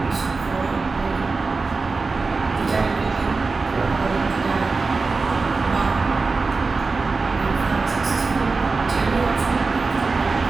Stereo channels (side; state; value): left; quieter; 4.1 dB